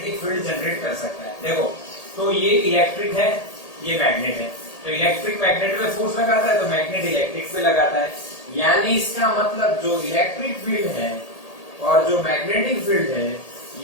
field generate कर सकता है। देखो, तो ये इलेक्ट्रिक है, ये मैग्नेट है, तो इलेक्ट्रिक मैग्नेट पे फोर्स लगाता है, तो मैग्नेट इलेक्ट्रिक पे लगाता है। यानी इसका मतलब जो इलेक्ट्रिक फील्ड है और जो मैग्नेटिक फील्ड है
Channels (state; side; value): late; right; 1.8 ms